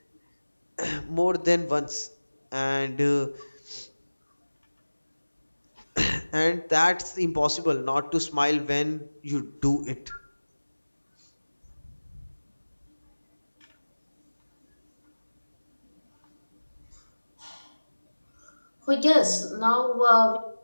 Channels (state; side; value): inverted; both; correlation -1.00